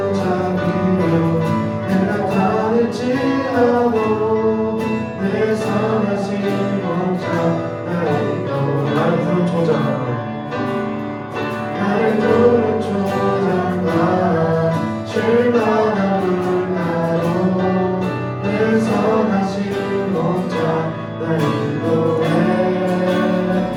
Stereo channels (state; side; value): identical; both; correlation 1.00